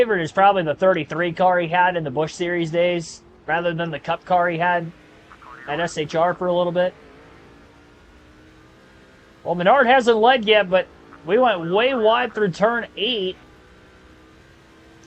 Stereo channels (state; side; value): identical; both; correlation 1.00